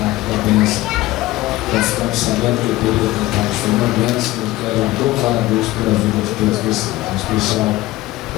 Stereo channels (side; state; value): right; quieter; 17.7 dB